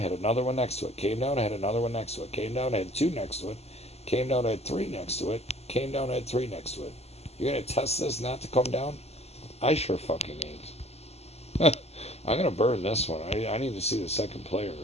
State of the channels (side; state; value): right; late; 0.30 ms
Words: another one next to it, came down, had another one next to it, came down, had 2 next to it, came down, had 3 next to it, came down, had 3 next to it. You're gonna test this not to come down? I sure fucking ain't. I'm gonna burn this one. I need to see the second player.